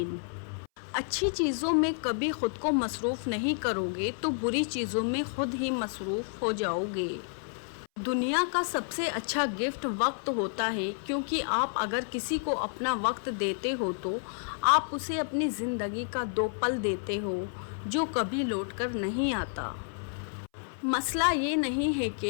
अच्छी चीज़ों में कभी ख़ुद को मसरूफ़ नहीं करोगे तो बुरी चीज़ों में ख़ुद ही मसरूफ़ हो जाओगे। दुनिया का सबसे अच्छा गिफ्ट वक्त होता है, क्योंकि आप अगर किसी को अपना वक्त देते हो तो आप उसे अपनी ज़िंदगी का 2 पल देते हो जो कभी लौट कर नहीं आता। मसला ये नहीं है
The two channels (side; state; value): right; silent; 58 dB below the other